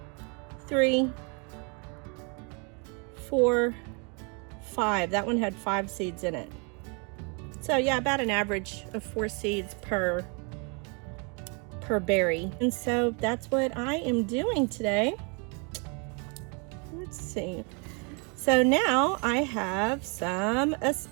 3, 4, 5. That one had 5 seeds in it. So yeah, about an average of 4 seeds per berry. And so that's what I am doing today. Let's see. So now I have some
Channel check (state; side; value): quieter; left; 34.4 dB